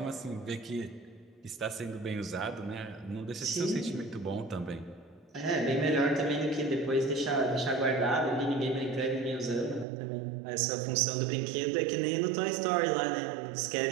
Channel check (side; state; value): left; drops out; at 9.9 s